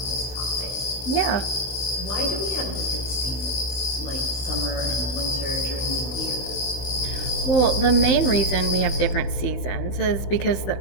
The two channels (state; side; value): late; right; 16 ms